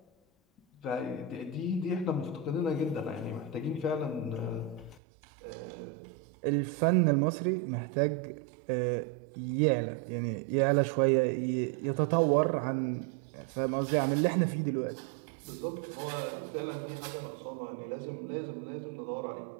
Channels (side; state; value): left; drops out; at 5.0 s